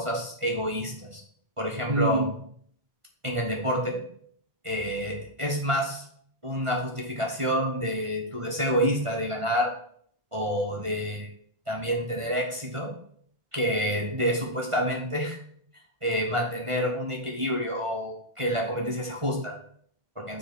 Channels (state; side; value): late; left; 1.5 ms